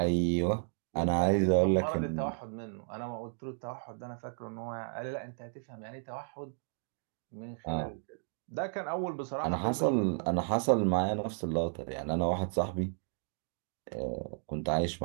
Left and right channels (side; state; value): left; silent; digital silence